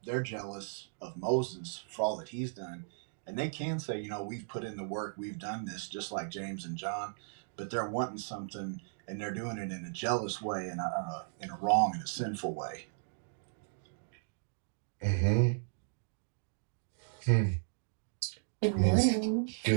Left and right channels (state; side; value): silent; left; digital silence